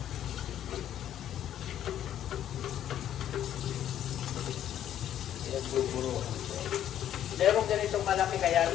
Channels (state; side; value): quieter; right; 10.9 dB